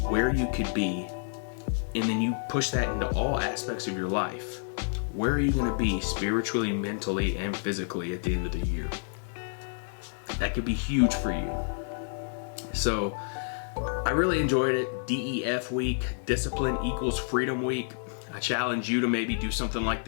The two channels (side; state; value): right; silent; digital silence